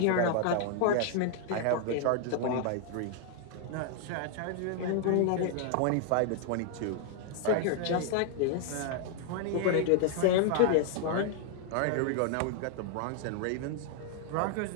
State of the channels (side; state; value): both; different; correlation 0.00